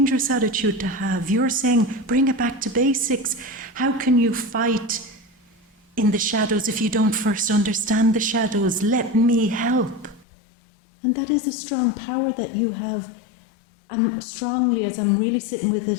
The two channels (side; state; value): right; drops out; at 10.2 s